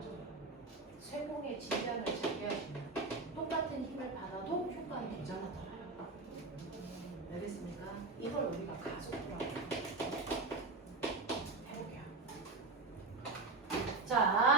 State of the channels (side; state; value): left; quieter; 3.6 dB